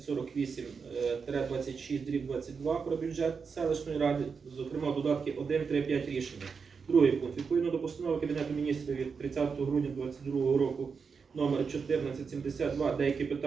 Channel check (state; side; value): quieter; left; 5.5 dB